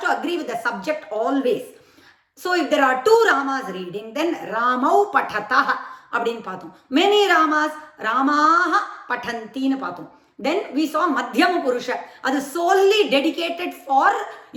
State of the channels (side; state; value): both; identical; correlation 1.00